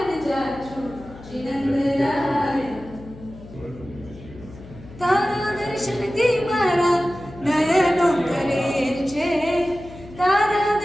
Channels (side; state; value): left; noise; hum, 18 dB below the sound